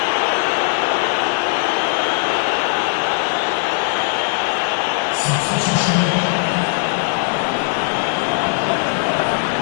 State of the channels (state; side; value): silent; right; digital silence